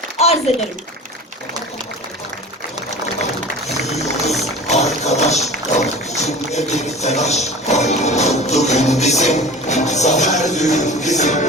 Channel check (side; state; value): both; normal; correlation 0.38